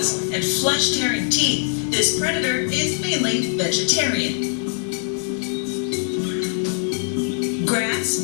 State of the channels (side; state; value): right; silent; digital silence